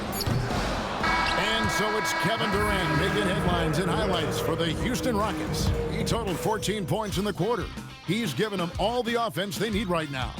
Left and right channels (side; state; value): both; identical; correlation 1.00